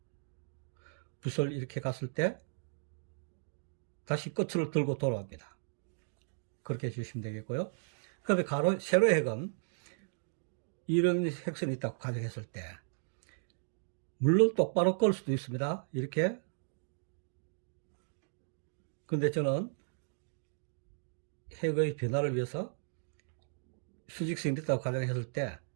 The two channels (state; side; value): silent; left; digital silence